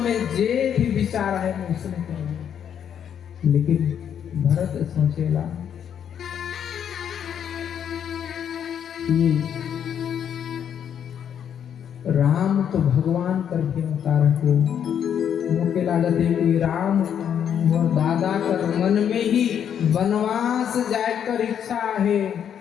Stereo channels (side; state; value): right; quieter; 8.7 dB